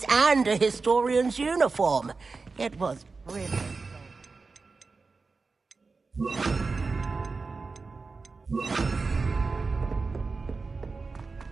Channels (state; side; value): quieter; left; 4.2 dB